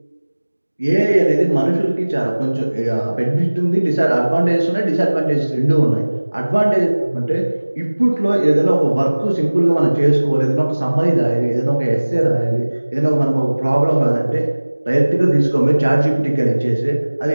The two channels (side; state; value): both; inverted; correlation -1.00